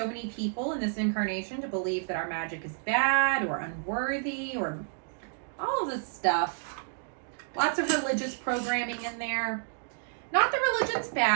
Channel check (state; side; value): silent; left; digital silence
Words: many people in this incarnation to believe that our magic is bad or unworthy or all of this stuff. Lots of religious programming in there. Not that religion's